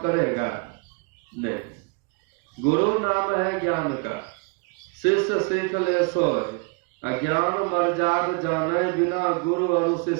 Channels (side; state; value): left; quieter; 31.8 dB